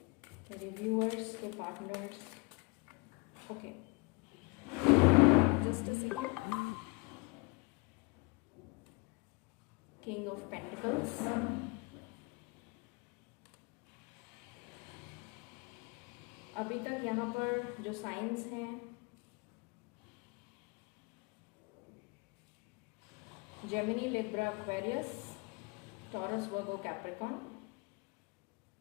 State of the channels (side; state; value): right; quieter; 28.8 dB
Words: मेरे व्यूअर्स के partners, okay, just a second. King of pentacles, अभी तक यहाँ पर जो साइंस हैं, Gemini, Libra, Aquarius, taurus, Virgo, Capricorn